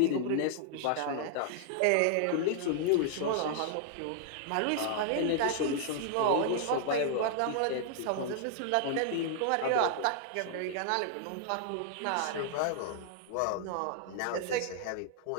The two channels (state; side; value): different; both; correlation 0.00